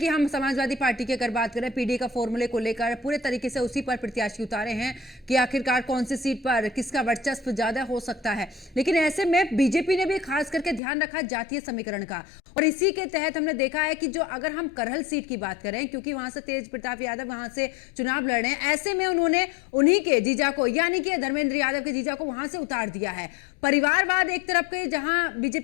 हम समाजवादी पार्टी की अगर बात करें, पीडी का फॉर्मूले को लेकर पूरे तरीके से उसी पर प्रत्याशी उतारे हैं कि आखिरकार कौन सी सीट पर किसका वर्चस्व ज्यादा हो सकता है। लेकिन ऐसे में बीजेपी ने भी खास करके ध्यान रखा जातीय समीकरण का, और इसी के तहत हमने देखा है कि जो अगर हम करहल सीट की बात करें, क्योंकि वहां से तेज प्रताप यादव वहां से चुनाव लड़ रहे हैं, ऐसे में उन्होंने उन्हीं के जीजा को, यानी कि धर्मेंद्र यादव के जीजा को वहां से उतार दिया है। परिवारवाद एक तरफ के जहां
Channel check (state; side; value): drops out; right; at 10.8 s